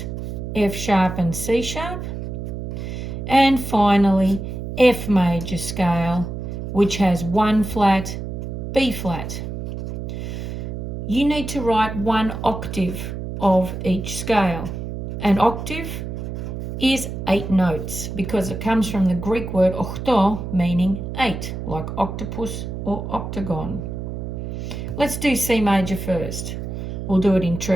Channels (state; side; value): noise; right; hum, 6 dB below the sound